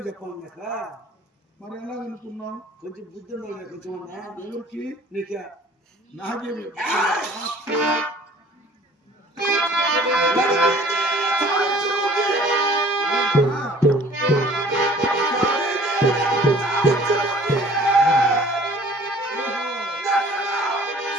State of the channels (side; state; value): both; normal; correlation 0.51